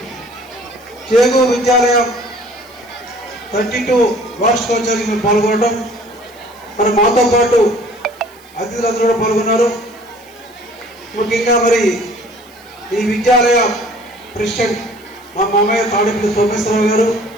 చేగు విద్యాలయం 32 వార్షికోత్సవానికి మేము పాల్గొనడం. మరి మాతో పాటు అతిథులందరూ కూడా పాల్గొన్నారు. ముఖ్యంగా మరి ఈ విద్యాలయ ప్రెసిడెంట్ మా మామయ్య తాడిపల్లి సోమేశ్వరరావు గారు,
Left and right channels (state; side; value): noise; right; hiss, 27 dB below the sound